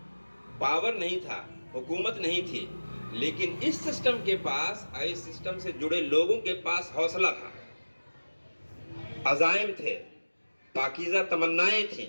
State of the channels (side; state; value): both; inverted; correlation -1.00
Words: پاور نہیں تھا، حکومت نہیں تھی، لیکن اس سسٹم کے پاس، اس سسٹم سے جڑے لوگوں کے پاس حوصلہ تھا، عزائم تھے، پاکیزہ تمنائیں